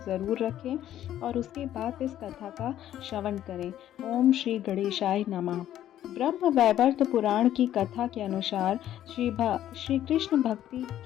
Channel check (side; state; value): right; quieter; 11.9 dB